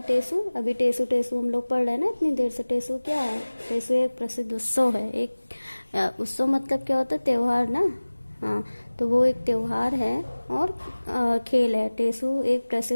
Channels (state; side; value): inverted; both; correlation -1.00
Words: टेसू, अभी टेसू टेसू हम लोग पढ़ रहे हैं ना इतनी देर से। टेसू क्या है, टेसू एक प्रसिद्ध उत्सव है। एक उत्सव मतलब क्या होता है, त्योहार ना। हाँ, तो वो एक त्योहार है और खेल है। टेसू एक